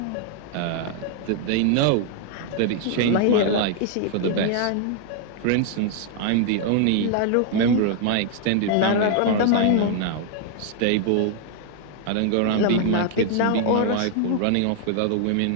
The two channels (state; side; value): different; both; correlation 0.00